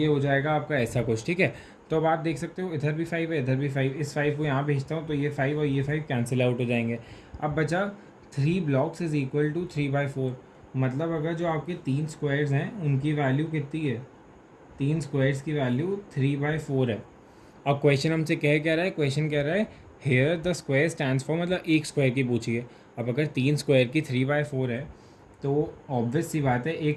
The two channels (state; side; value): identical; both; correlation 1.00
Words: हो जाएगा आपका ऐसा कुछ। ठीक है, तो अब आप देख सकते हो इधर भी 5 है, इधर भी 5, इस 5 को यहाँ भेजता हूँ तो ये 5 और ये 5 कैंसिल आउट हो जाएंगे। अब बचा 3 ब्लॉक्स इज इक्वल टू 3/4, मतलब अगर जो आपके 3 स्क्वायर्स हैं उनकी वैल्यू कितनी है, 3 स्क्वायर्स की वैल्यू 3/4 है। अब क्वेश्चन हमसे क्या रहा है, क्वेश्चन कह रहा है here the square stands for, मतलब एक स्क्वायर की पूछिए। अब अगर 3 स्क्वायर की 3/4 है तो ऑब्वियस सी बात है